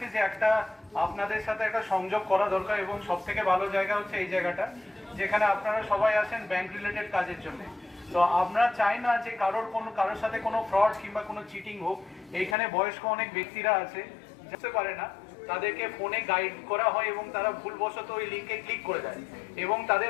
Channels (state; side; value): drops out; right; at 12.6 s